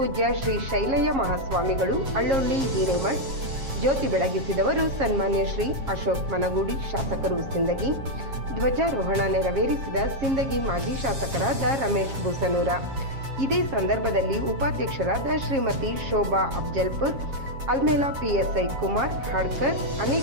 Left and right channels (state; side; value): late; left; 7.4 ms